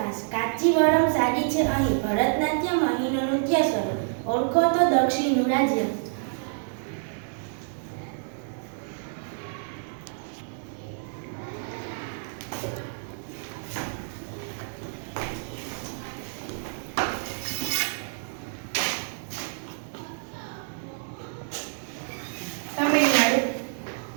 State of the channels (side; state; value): left; silent; digital silence